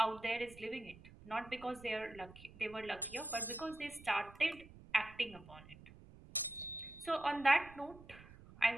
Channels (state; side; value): noise; right; rumble, 19 dB below the sound